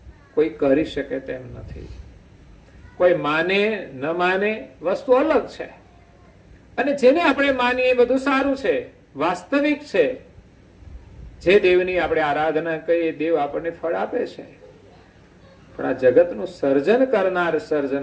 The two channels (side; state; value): both; identical; correlation 1.00